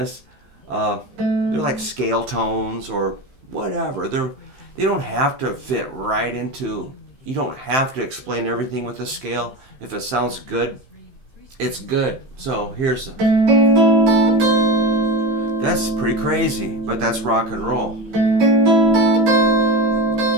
They're like scale tones or whatever. They don't have to fit right into. You don't have to explain everything with a scale. If it sounds good, it's good. So here's. That's pretty crazy, but that's rock and roll.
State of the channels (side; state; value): left; late; 15 ms